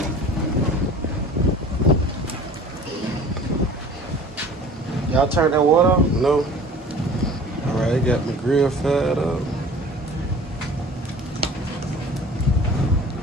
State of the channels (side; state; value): both; normal; correlation 0.45